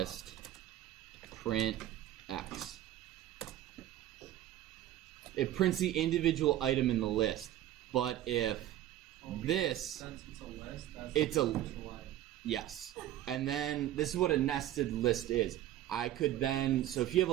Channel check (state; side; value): quieter; left; 13.1 dB